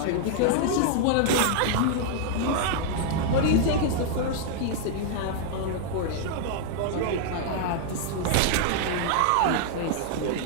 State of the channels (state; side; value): different; both; correlation -0.01